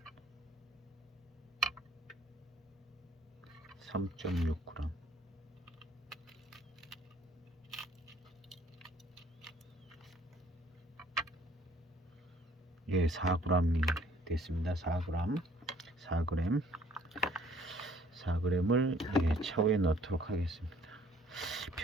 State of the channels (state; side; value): normal; both; correlation 0.59